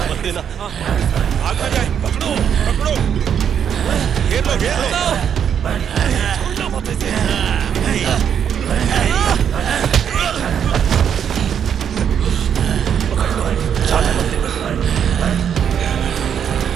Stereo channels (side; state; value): left; quieter; 8.3 dB